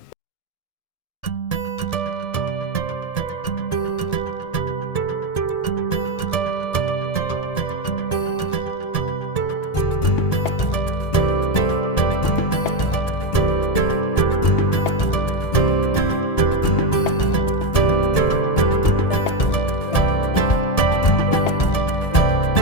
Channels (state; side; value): late; right; 1.7 ms